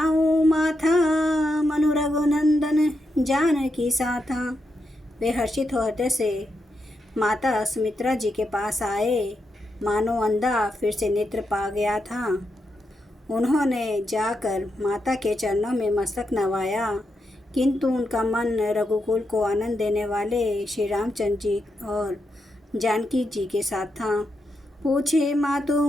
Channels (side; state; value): both; normal; correlation 0.84